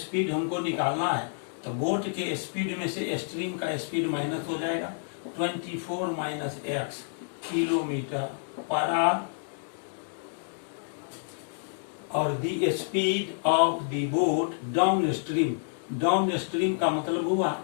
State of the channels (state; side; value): silent; right; digital silence